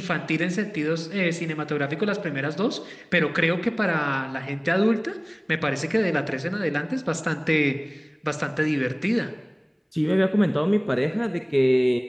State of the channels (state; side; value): identical; both; correlation 1.00